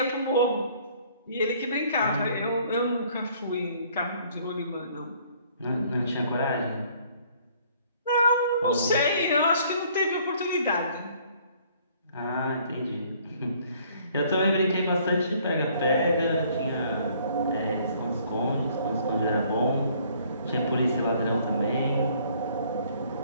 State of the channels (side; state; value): both; inverted; correlation -0.60